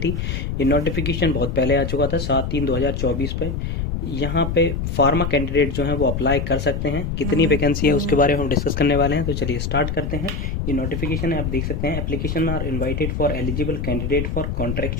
ये नोटिफिकेशन बहुत पहले आ चुका था 7/3/2024 पे। यहाँ पे फार्मा कैंडिडेट जो हैं वो अप्लाई कर सकते हैं। कितनी वैकेंसी है उसके बारे में हम डिस्कस करने वाले हैं, तो चलिए स्टार्ट करते हैं। ये नोटिफिकेशन है, आप देख सकते हैं application are invited for eligible candidate for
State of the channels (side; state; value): left; noise; rumble, 2 dB below the sound